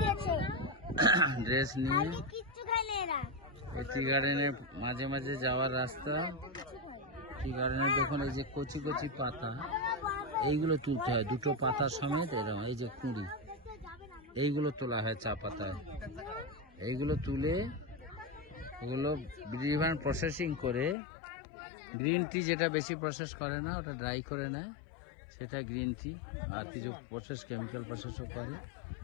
ড্রেস নিয়ে। এই টি গার্ডেনের মাঝে মাঝে যাওয়ার রাস্তা। টি গার্ডেনের দেখুন এই যে কচি কচি পাতা, এইগুলো তুলতে হয় দুটো পাতা সমেত, এরকম এই যে কুঁড়ি, এইগুলো তোলা হয় চা পাতায়। এইগুলো তুলে ওগুলো ডিফারেন্ট প্রসেসিং করে, গ্রিন টি যেটা বেশি প্রসেস করে না ওটা ড্রাই করে নেয়, সেটা গ্রিন টি। আর কিছু প্রসেস কেমিক্যাল প্রসেসও করে,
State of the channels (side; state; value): right; drops out; at 21.0 s